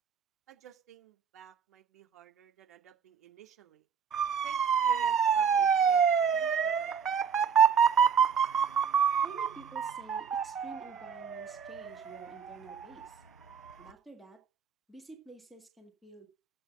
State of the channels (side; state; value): left; quieter; 6.9 dB